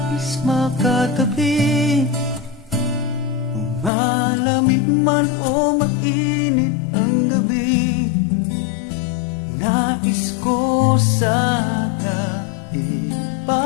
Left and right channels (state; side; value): drops out; right; at 3.9 s